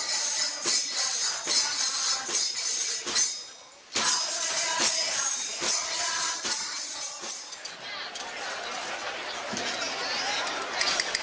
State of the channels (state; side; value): identical; both; correlation 1.00